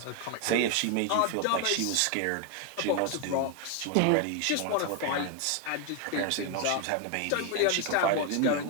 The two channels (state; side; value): different; both; correlation 0.01